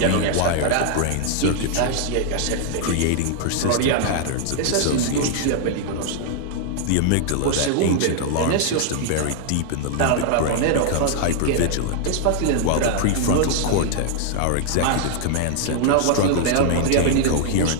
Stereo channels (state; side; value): different; both; correlation 0.00